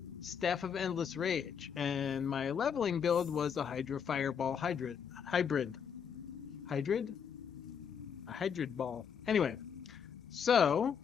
Staff of Endless Rage. And my leveling build was a Hydra Fireball Hybrid. Hybrid? A Hybrid Ball. Anyway, so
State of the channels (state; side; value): quieter; right; 7.3 dB